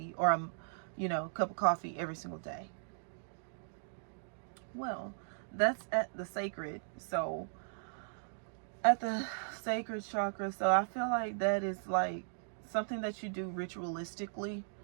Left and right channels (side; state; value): left; silent; digital silence